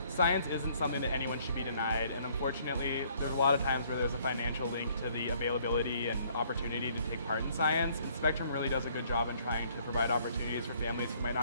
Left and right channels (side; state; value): both; inverted; correlation -0.63